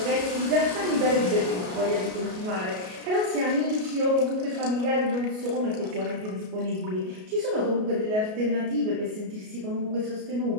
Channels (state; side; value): late; left; 33 ms